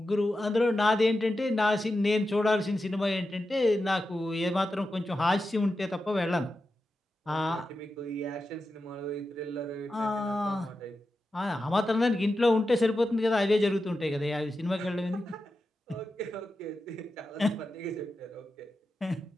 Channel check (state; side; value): normal; both; correlation 0.90